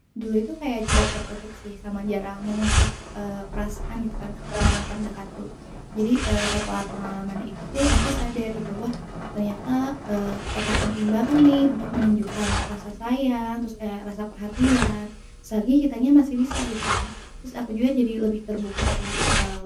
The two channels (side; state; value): both; identical; correlation 1.00